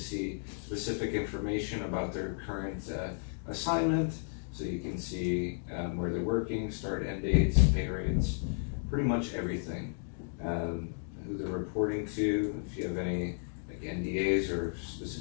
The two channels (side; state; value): right; silent; digital silence